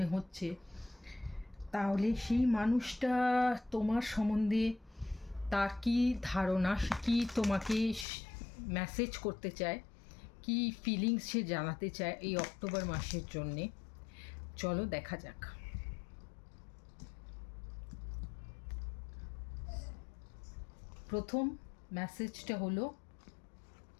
হচ্ছে, তাহলে সেই মানুষটা তোমার সম্বন্ধে তার কী ধারণা, কী তোমাকে মেসেজ করতে চায়, কী ফিলিংস সে জানাতে চায় এই অক্টোবর মাসের জন্যে। চলো দেখা যাক। প্রথম মেসেজটা হলো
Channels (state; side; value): drops out; right; at 8.1 s